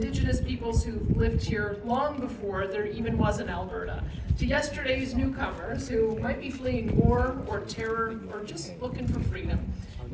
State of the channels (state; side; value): identical; both; correlation 1.00